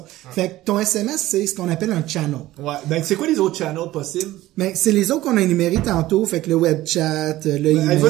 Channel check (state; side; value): quieter; left; 16.1 dB